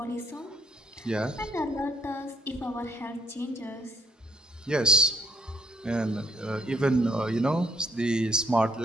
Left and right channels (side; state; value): both; normal; correlation 0.70